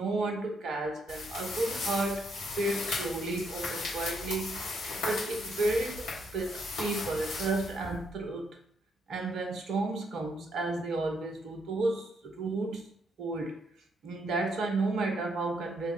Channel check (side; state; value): both; normal; correlation 0.75